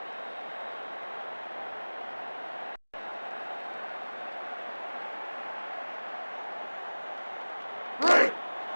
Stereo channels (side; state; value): both; inverted; correlation -1.00